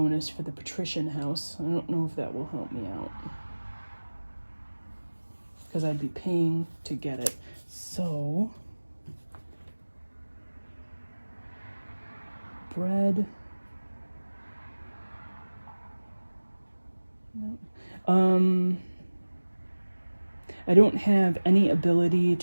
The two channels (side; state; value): both; inverted; correlation -1.00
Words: for the patrician house. I don't know if that will help me out, because I'd be paying to get it. So, bread, I don't have any ability